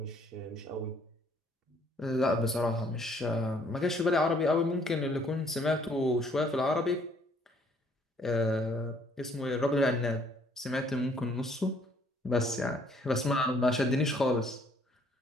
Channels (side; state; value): both; normal; correlation 0.63